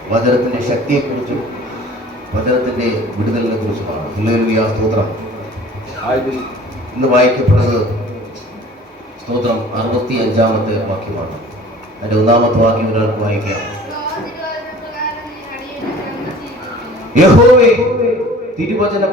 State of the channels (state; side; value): normal; both; correlation 0.47